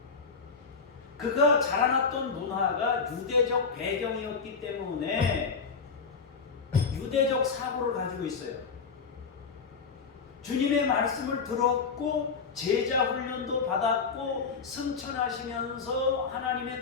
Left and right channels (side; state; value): right; quieter; 5.3 dB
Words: 그가 자라났던 문화가 유대적 배경이었기 때문에 유대적 사고를 가지고 있어요. 주님의 말씀을 들었고 제자 훈련도 받았고 승천하시면서 하나님의